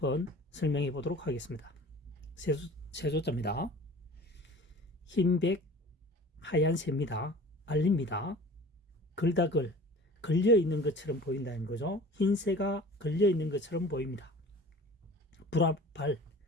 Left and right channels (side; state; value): both; normal; correlation 0.43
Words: 설명해 보도록 하겠습니다. 세조자입니다. 흰백 하얀 새입니다. 알립니다. 글다글 걸려 있는 것처럼 보인다는 거죠. 흰새가 걸려 있는 것처럼 보입니다. 불화발,